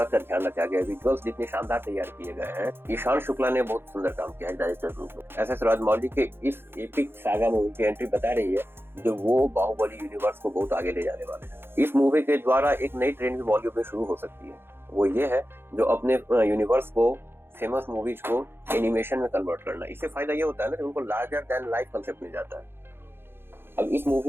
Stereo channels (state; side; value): late; left; 0.11 ms